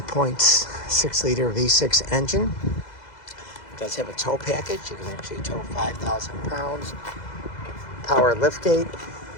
liter V6 engine. It does have a tow package. You can actually tow 5,000 pounds. Power liftgate.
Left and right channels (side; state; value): right; late; 2.0 ms